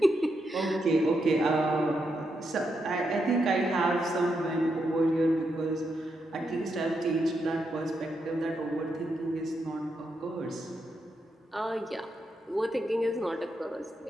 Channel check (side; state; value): both; normal; correlation 0.82